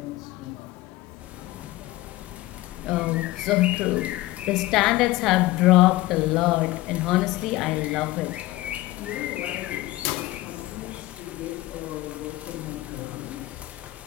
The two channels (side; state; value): right; quieter; 18.0 dB